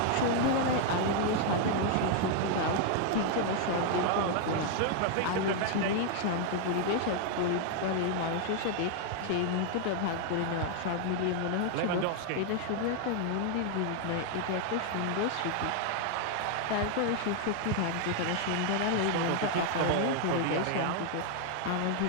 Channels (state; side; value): different; both; correlation 0.00